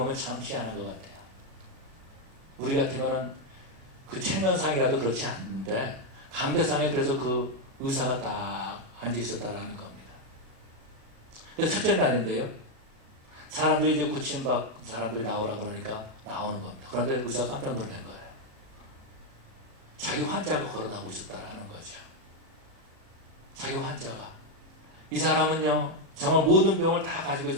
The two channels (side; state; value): left; late; 37 ms